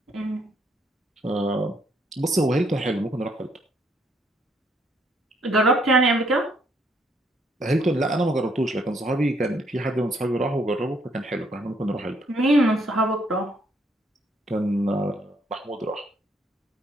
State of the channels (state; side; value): normal; both; correlation 0.70